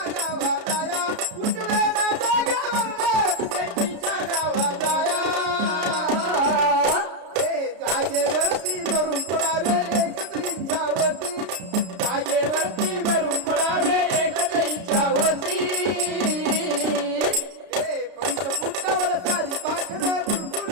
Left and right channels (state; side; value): late; left; 33 ms